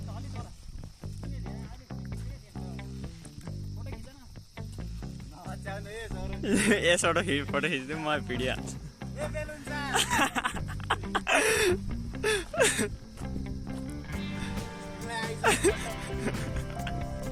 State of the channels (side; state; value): both; identical; correlation 1.00